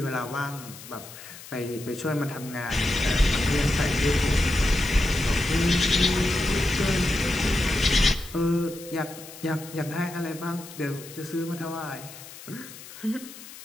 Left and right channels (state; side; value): noise; left; hiss, 16 dB below the sound